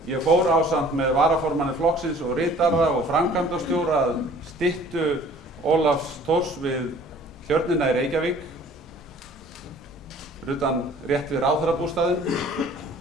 ég fór ásamt með varaformanni flokksins og ritara og framkvæmdastjóra að styttu Ólafs Thors við Tjörnina í Reykjavík, fyrir utan rétt við ráðherrabústaðinn,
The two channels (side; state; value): both; normal; correlation 0.52